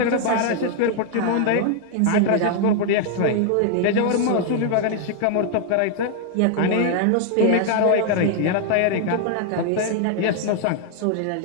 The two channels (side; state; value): both; different; correlation 0.00